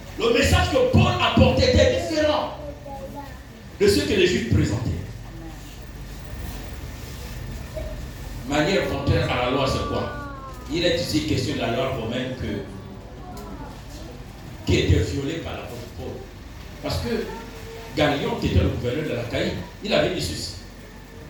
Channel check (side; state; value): both; identical; correlation 1.00